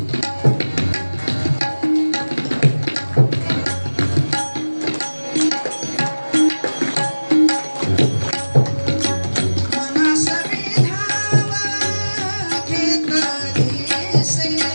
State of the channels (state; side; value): inverted; both; correlation -1.00